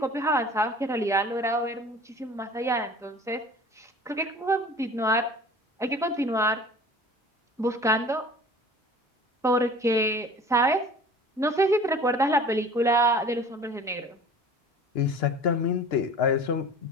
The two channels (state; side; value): normal; both; correlation 0.43